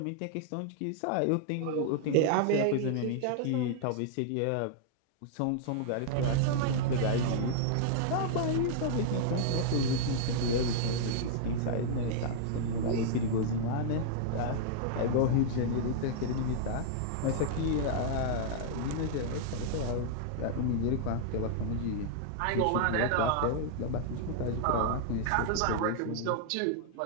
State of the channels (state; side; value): different; both; correlation -0.01